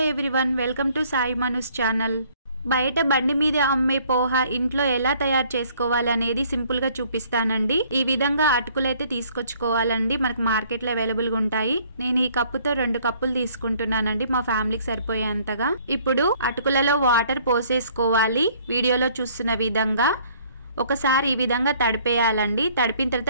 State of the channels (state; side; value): inverted; both; correlation -0.60